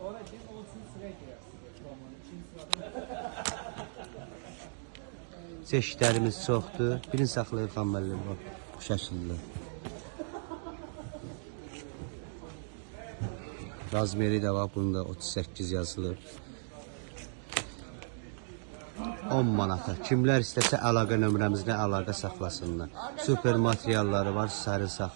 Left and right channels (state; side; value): silent; left; digital silence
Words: Çeşidlərimiz çoxdur. Birini saxlayıb xamməlli bu şəkildə. Razmeri də var, bunda 38 yazılıb. 10 manata. Kimlər istəsə əlaqə nömrəmizlə əlaqə saxlasınlar. Super materialları var, sərin